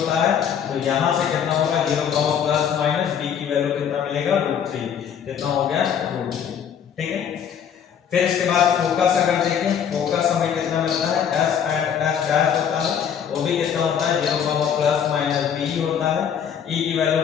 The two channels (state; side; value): quieter; right; 8.2 dB